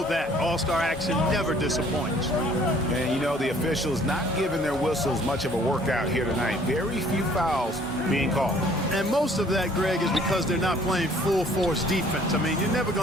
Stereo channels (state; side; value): normal; both; correlation 0.57